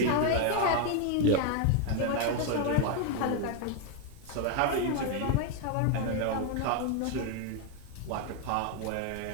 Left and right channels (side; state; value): both; different; correlation 0.01